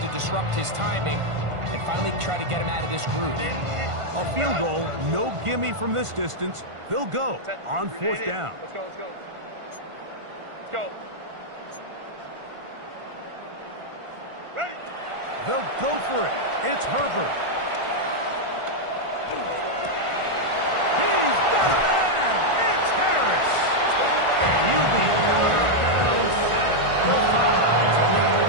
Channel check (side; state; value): left; late; 1.5 ms